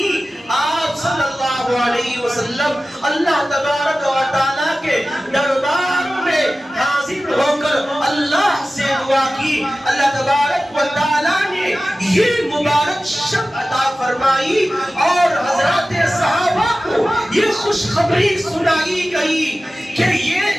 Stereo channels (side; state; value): both; normal; correlation 0.96